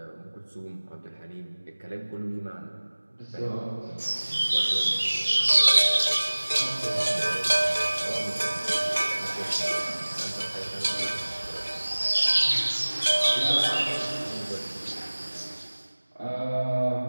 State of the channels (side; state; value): both; inverted; correlation -1.00